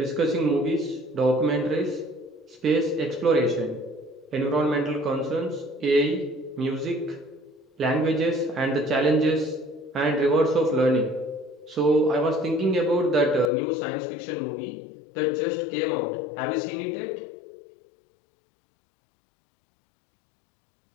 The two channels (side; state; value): right; drops out; at 13.5 s